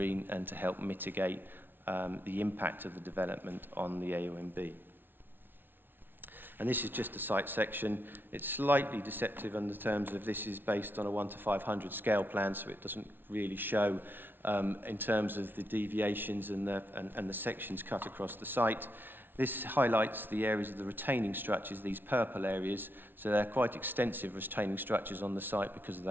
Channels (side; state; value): left; late; 0.098 ms